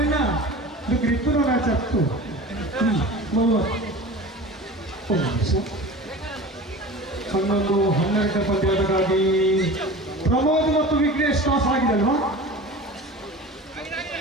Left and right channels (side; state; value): both; normal; correlation 0.36